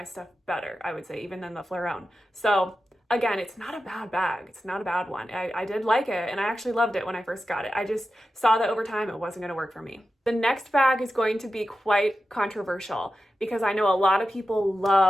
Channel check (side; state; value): both; normal; correlation 0.92